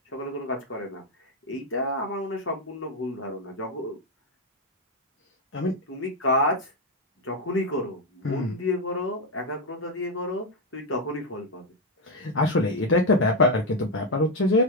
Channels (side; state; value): both; normal; correlation 0.06